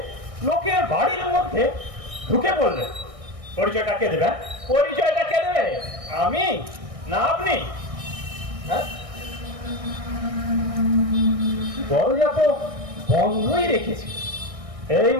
লোকের বাড়ির মধ্যে ঢুকে পড়লেন। পরিচয়টা কে দেবে? পরিচয়টা কে দেবে? আমি না আপনি? হ্যাঁ, দরজা তো বন্ধই রেখেছি। এই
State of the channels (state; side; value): late; left; 1.6 ms